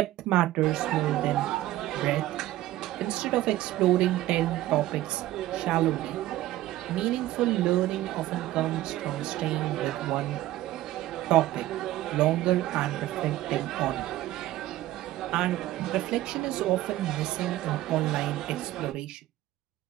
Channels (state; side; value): quieter; left; 15.2 dB